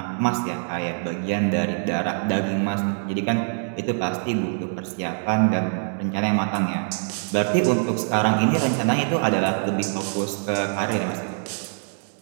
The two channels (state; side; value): silent; left; 63 dB below the other